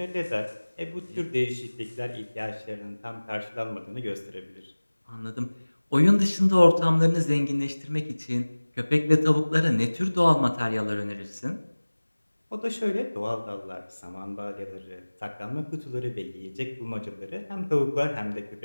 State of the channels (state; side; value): inverted; both; correlation -1.00